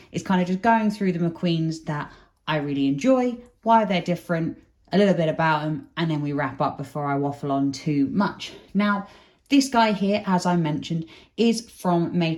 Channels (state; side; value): identical; both; correlation 1.00